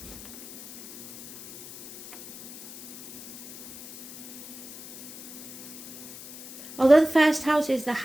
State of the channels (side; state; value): left; noise; hiss, 13 dB below the sound